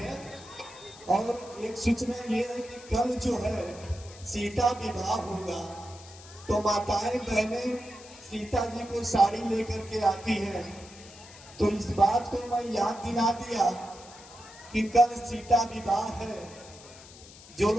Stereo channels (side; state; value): left; noise; hiss, 19 dB below the sound